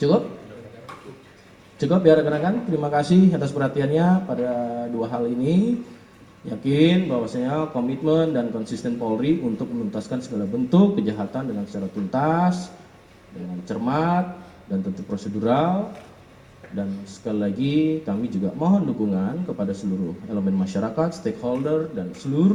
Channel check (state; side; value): identical; both; correlation 1.00